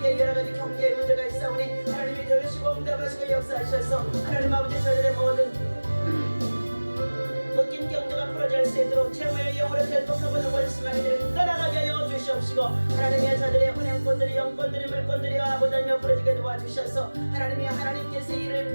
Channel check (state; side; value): inverted; both; correlation -1.00